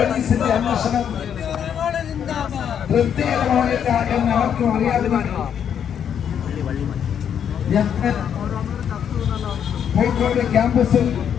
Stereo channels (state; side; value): quieter; right; 8.5 dB